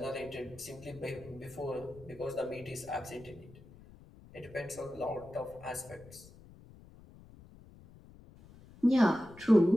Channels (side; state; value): left; noise; rumble, 21 dB below the sound